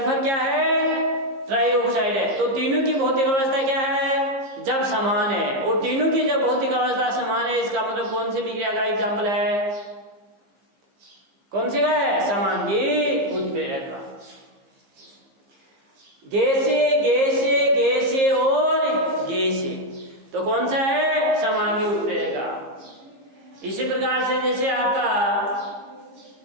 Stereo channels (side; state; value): left; late; 15 ms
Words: क्या है? ट्राइऑक्साइड है। तो तीनों की भौतिक अवस्था क्या है? जब समान है। और तीनों की जब भौतिक अवस्था समान है, इसका मतलब कौन सी विक्रिया का एग्जाम्पल है? कौन सी का है? समांगी उत्प्रेरक का। गैसे गैसे गैसे और गैसे, तो कौन सा है? समांगी उत्प्रेरक का। इसी प्रकार से जैसे आपका